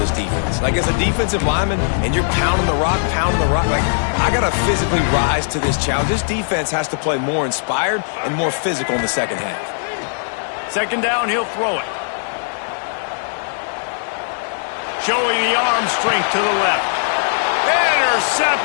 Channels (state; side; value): silent; right; 67 dB below the other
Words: defense. Like, as a defensive lineman, and you're pounding the rock, like, I got to physically rise to this challenge. This defense has to play more inspired and more physical in the second half. Second down, he'll throw it. Showing the arm strength to the left.